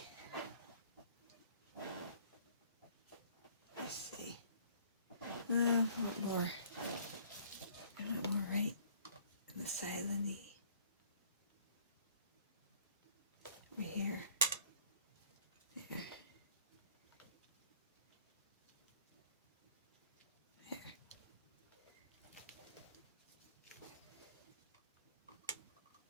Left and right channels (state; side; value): inverted; both; correlation -0.54